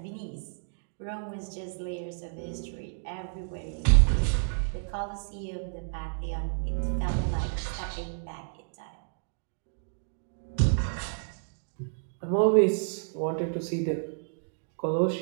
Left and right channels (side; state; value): left; silent; digital silence